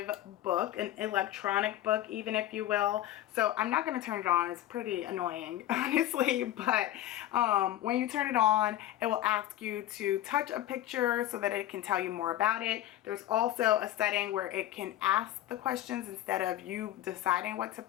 book, an electronic book even, if you will. So I'm not going to turn it on. It's pretty annoying, honestly, but when you turn it on, it will ask you to touch a picture so that it can tell you more about it. There's also a setting where it can ask the questions instead of you deciding what to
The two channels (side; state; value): right; quieter; 13.5 dB